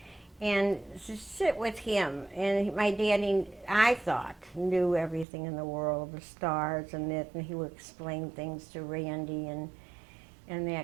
and to sit with him. And my daddy, I thought, knew everything in the world, the stars and it, and he would explain things to Randy and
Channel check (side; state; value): left; drops out; at 5.2 s